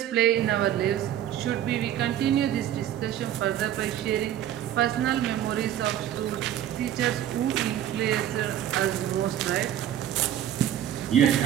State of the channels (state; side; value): quieter; left; 11.3 dB